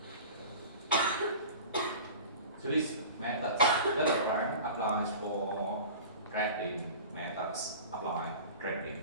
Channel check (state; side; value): inverted; both; correlation -0.38